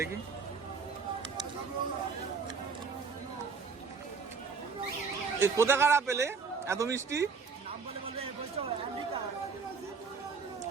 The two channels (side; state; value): left; quieter; 5.2 dB